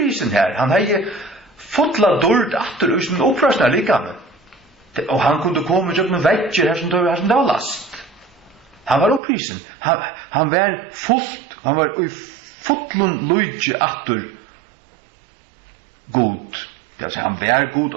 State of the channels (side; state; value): left; drops out; at 9.2 s